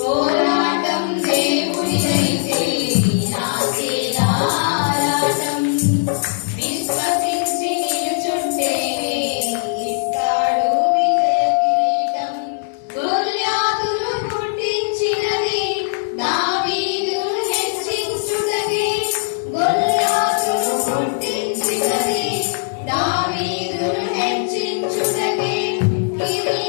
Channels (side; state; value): right; silent; 66 dB below the other